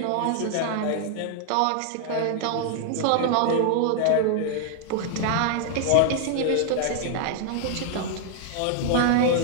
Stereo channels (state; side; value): different; both; correlation 0.00